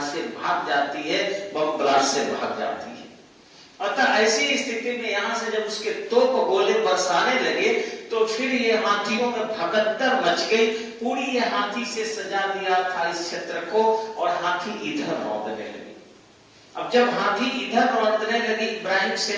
से भाग जाती है, बम ब्लास्ट से भाग जाती है। अतः ऐसी स्थिति में यहां से जब उसके तोप गोले बरसाने लगे तो फिर ये हाथियों में भगदड़ मच गई। पूरी ये हाथी से सजा दिया था इस क्षेत्र को और हाथी इधर रौंदने लगे। अब जब हाथी इधर रौंदने लगे इब्राहिम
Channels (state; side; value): identical; both; correlation 1.00